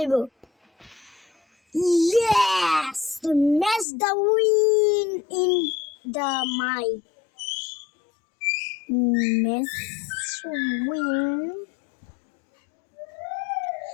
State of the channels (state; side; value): drops out; right; at 3.9 s